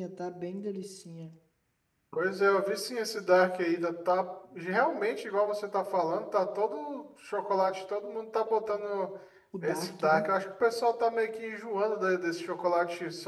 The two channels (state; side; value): identical; both; correlation 1.00